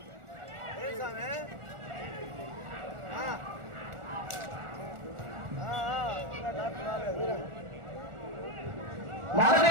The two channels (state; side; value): late; left; 1.4 ms